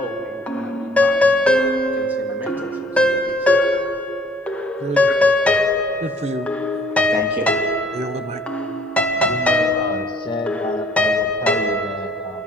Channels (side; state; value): both; normal; correlation 0.58